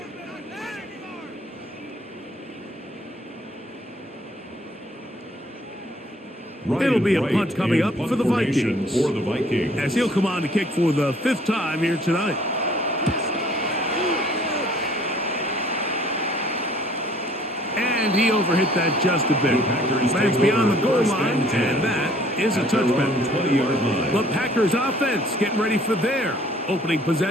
It'll be a punt coming up for the Vikings. As he'll come on to kick for the 5th time here tonight. And he overhit that just a bit. But it's beyond the goal line, and that is a touchback. The Packers offense getting ready for their opening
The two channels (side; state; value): both; normal; correlation 0.57